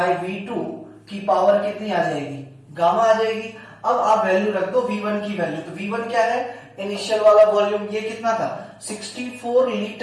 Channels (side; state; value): both; identical; correlation 1.00